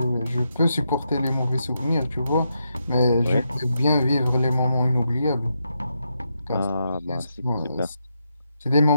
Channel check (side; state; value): both; inverted; correlation -0.83